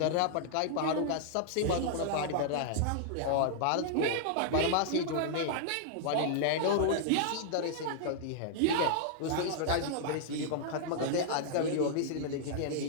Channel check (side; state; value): both; different; correlation -0.01